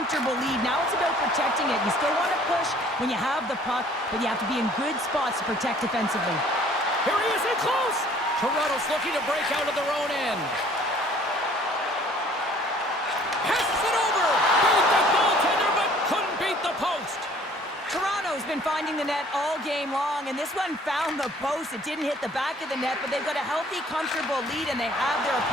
lead. Now it's about protecting it. You still want to push when you have the puck, but you have to be in good spots to protect defensively. Here he is in close. Toronto's looking to break out of their own end. Passes it over. Beat the goaltender, but couldn't beat the post. Toronto's been finding the net all game long, and this one found the post. It didn't hit the back of the net, but they've got a healthy, comfortable lead, and they have their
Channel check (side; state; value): both; normal; correlation 0.55